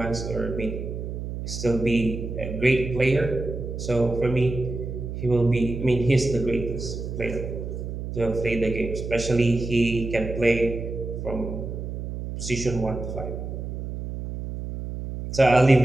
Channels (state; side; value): noise; right; hum, 6 dB below the sound